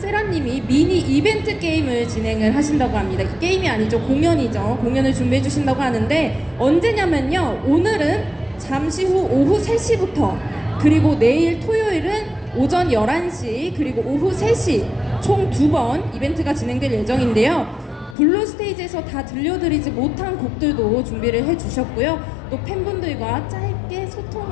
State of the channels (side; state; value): right; drops out; at 18.2 s